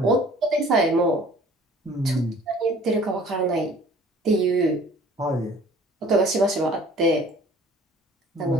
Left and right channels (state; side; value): normal; both; correlation 0.50